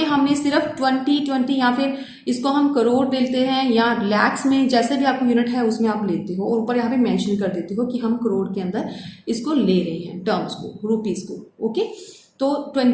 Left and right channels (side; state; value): both; identical; correlation 1.00